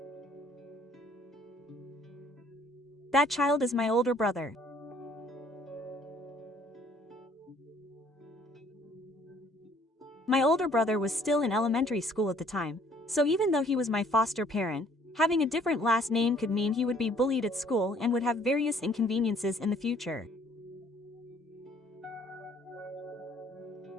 That child is my older brother. My older brother was still in elementary school at the time, so even though he was my foster parent, having a different last name could mean he would be bullied at school and would have various inconveniences in the future.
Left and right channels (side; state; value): both; normal; correlation 0.60